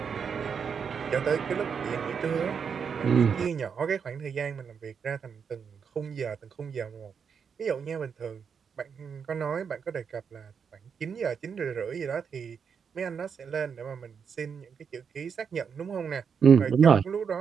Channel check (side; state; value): left; quieter; 6.6 dB